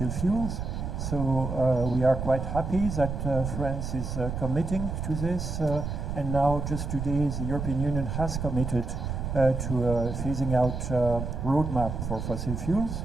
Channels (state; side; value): noise; right; rumble, 4 dB below the sound